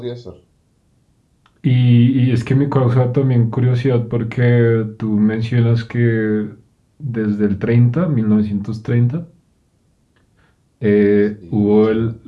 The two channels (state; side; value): identical; both; correlation 1.00